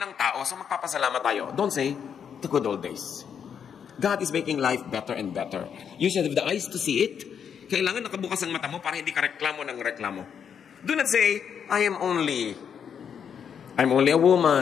ng tao, so magpapasalamat tayo. Don't say, the good old days. God is making life better and better. You should have the eyes to see it. Kailangan nakabukas ang mata mo para hindi ka reklamo ng reklamo. Do not say, I'm only a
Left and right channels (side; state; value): right; quieter; 7.6 dB